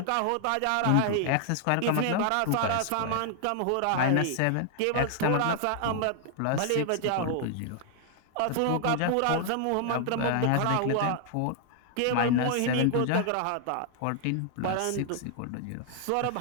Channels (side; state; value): both; different; correlation 0.00